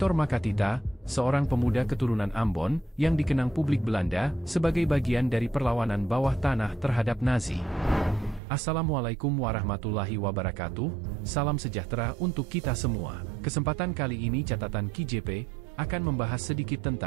Makatita, seorang pemuda keturunan Ambon, yang dikenang publik Belanda sebagai bagian dari perlawanan bawah tanah terhadap Nazi. Assalamualaikum warahmatullahi wabarakatuh, salam sejahtera untuk kita semua. Kesempatan kali ini catatan KJP akan membahas sedikit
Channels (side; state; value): left; drops out; at 8.4 s